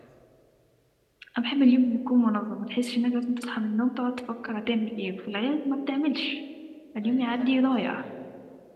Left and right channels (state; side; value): identical; both; correlation 1.00